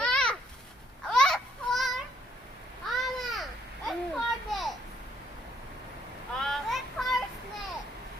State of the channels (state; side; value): normal; both; correlation 0.68